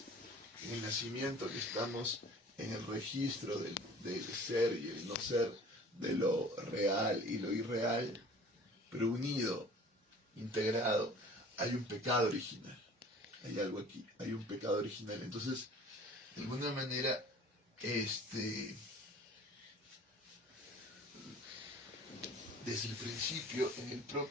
En el nacimiento que estamos en el registro del ser y el no ser, de lo real y lo irreal, pero unido, integrado, hay un pecado original. Hay algo aquí, hay un pecado original. Entonces, de alguna manera, desde el principio, en el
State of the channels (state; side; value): normal; both; correlation 0.47